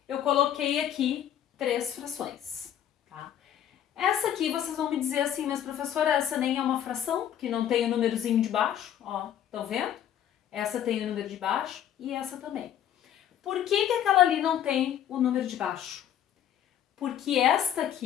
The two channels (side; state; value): right; quieter; 10.3 dB